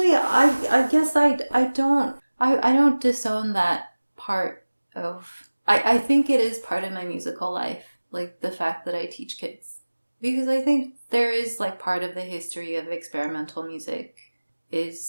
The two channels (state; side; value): inverted; both; correlation -1.00